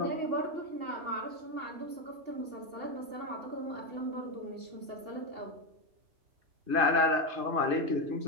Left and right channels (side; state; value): left; late; 2.8 ms